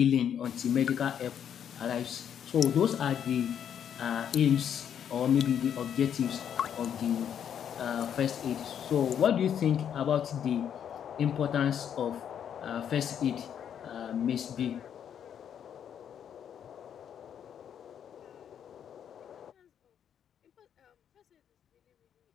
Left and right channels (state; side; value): quieter; right; 8.8 dB